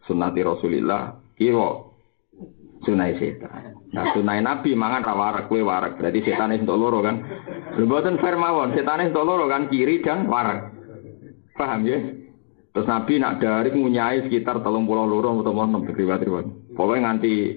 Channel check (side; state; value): right; silent; digital silence